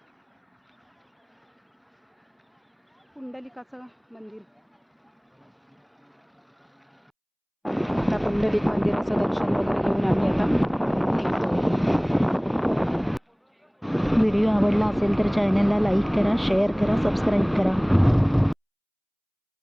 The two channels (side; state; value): both; identical; correlation 1.00